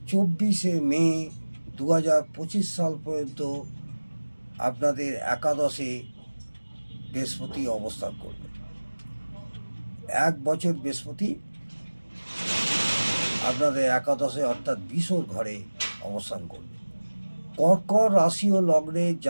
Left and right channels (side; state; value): both; inverted; correlation -1.00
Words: 24 মে 2025 সাল পর্যন্ত আপনাদের একাদশে বৃহস্পতি অবস্থান করবে। 1 বছর বৃহস্পতি আপনাদের একাদশে অর্থাৎ বিশর ঘরে অবস্থান করবে। কর্কট রাশি ও লগ্নের